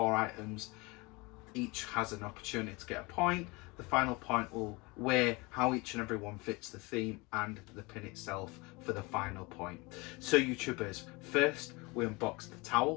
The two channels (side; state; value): right; quieter; 25.6 dB